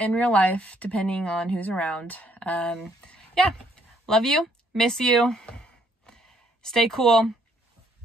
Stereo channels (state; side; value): normal; both; correlation 0.68